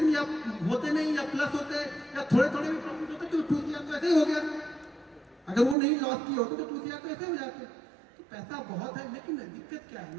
या होते नहीं या प्लस होते या थोड़े थोड़े भी प्रॉफिट होते तो 2 CR तो ऐसे ही हो गया। अगर वो नहीं लॉस किए होते तो 2 CR तो ऐसे हो जाते। तो पैसा बहुत है, लेकिन दिक्कत क्या है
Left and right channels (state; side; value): drops out; left; at 5.8 s